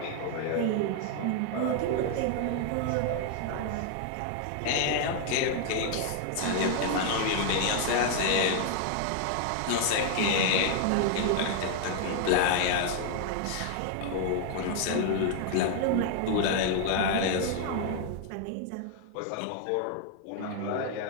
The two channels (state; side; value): different; both; correlation 0.00